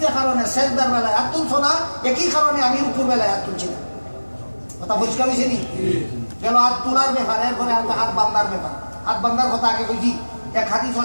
যে কারণে সেজদার বেলায় হাত তুলছো না একই কারণে আমি রুকুর বেলায় হাত তুলছি না কথা বুঝতে পারছি নি গেল হাত তোলার ব্যাপার এরপরে হাত বান্দার ব্যাপার হাত বান্দার কথা আগে কইছি এক হাদিস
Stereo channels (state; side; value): inverted; both; correlation -1.00